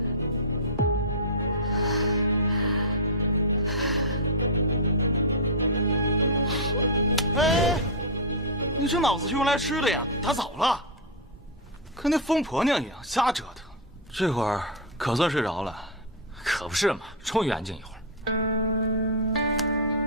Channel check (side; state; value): both; normal; correlation -0.04